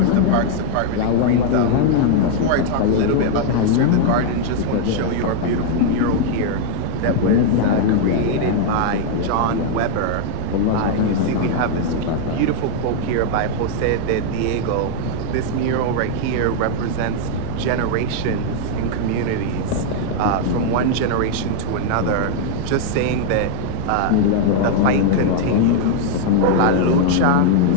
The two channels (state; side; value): different; both; correlation 0.00